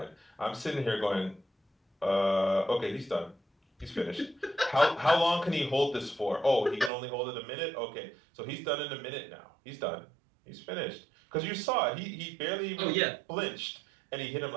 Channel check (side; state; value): left; drops out; at 6.9 s